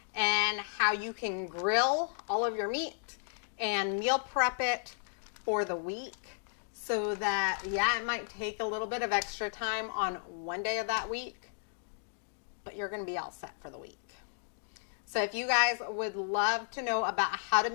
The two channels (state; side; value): silent; right; digital silence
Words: and how you can grill all of your meat and meal prep it for the week, so that, yeah, it might take a little bit of extra time on one day of that week, but you're going to be all set for the week. So if you guys would love to know about how to